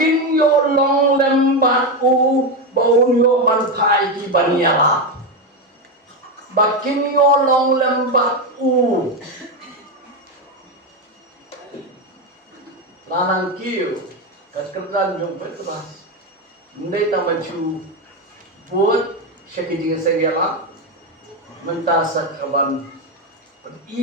yo long lembat u bau yo bantai di banyala. Bakin yo long lembat u lanang kiu kerjaan jom petras. Ndai tamaju buat syakijing seriala mentasa kaban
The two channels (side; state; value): both; normal; correlation 0.11